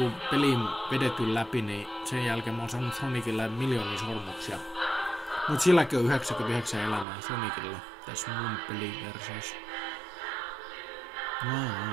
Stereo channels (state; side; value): drops out; left; at 7.1 s